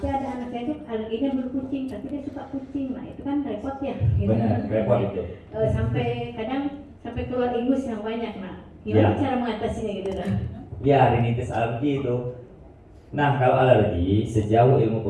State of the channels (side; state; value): both; identical; correlation 1.00